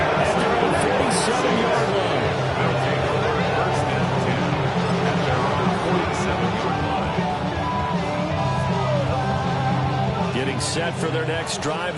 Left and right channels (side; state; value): both; identical; correlation 1.00